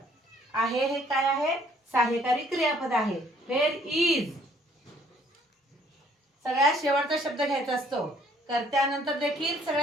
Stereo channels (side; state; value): both; normal; correlation 0.62